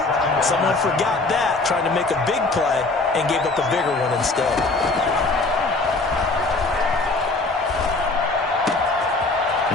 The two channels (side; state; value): right; quieter; 3.3 dB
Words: Someone forgot that, trying to make a big play and gave up a bigger one instead.